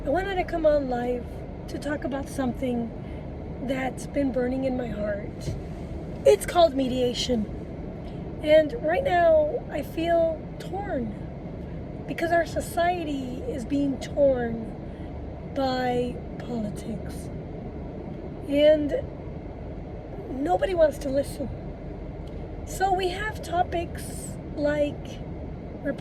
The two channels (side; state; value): both; identical; correlation 1.00